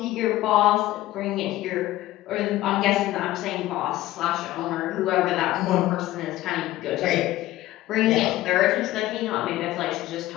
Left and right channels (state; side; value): quieter; right; 15.9 dB